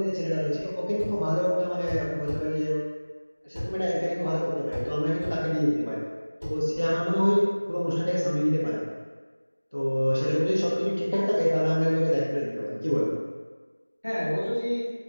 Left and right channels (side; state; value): both; inverted; correlation -1.00